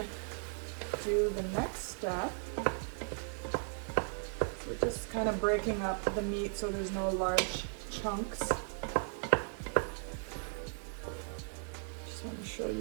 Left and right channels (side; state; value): left; silent; 53 dB below the other